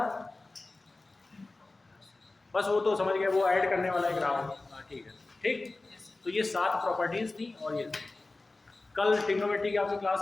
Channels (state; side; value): quieter; right; 3.2 dB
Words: बस वो तो समझ गए, वो ऐड करने वाला एक राउंड। हाँ ठीक है, ठीक। तो ये 7 प्रॉपर्टीज थी और ये कल ट्रिग्नोमेट्री की आपकी क्लास